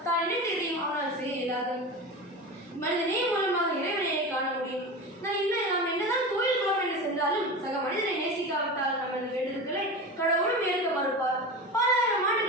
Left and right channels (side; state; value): both; normal; correlation 0.27